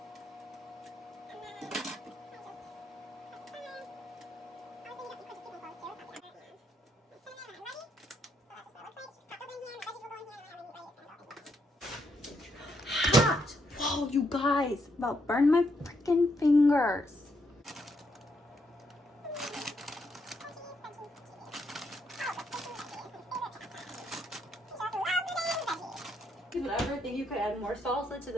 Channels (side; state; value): both; normal; correlation 0.77